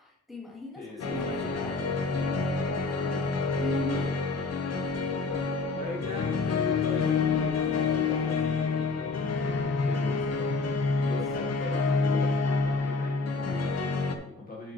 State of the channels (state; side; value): quieter; right; 3.9 dB